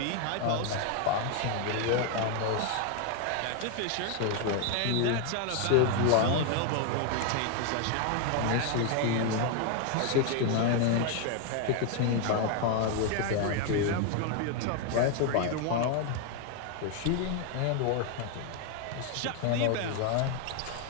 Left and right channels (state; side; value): different; both; correlation 0.00